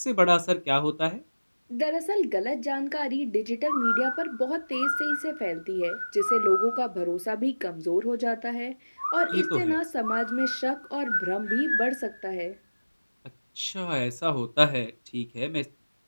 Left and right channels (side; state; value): both; inverted; correlation -1.00